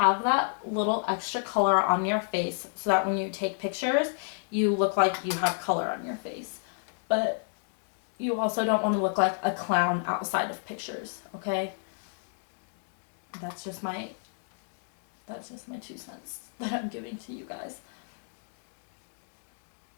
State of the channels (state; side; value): silent; right; digital silence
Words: that little extra color on your face so that when you take pictures, you look like you have color on your face. But you also don't want to look like a clown outside of pictures, okay? That's just my 2 cents that I'm giving to you guys.